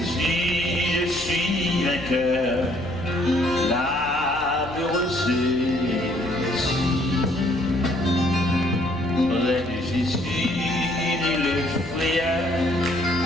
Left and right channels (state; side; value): noise; left; hum, 16 dB below the sound